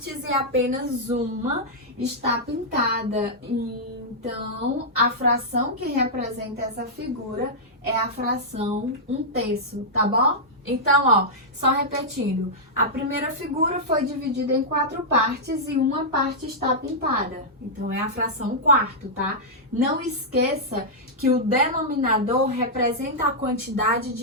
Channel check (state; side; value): normal; both; correlation -0.09